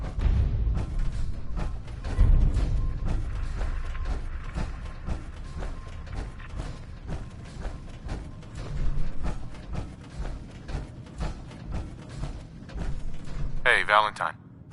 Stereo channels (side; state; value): both; identical; correlation 1.00